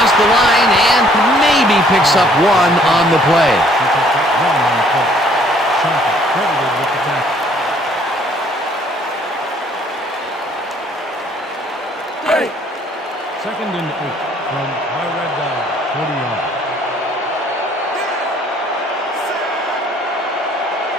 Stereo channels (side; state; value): both; normal; correlation 0.61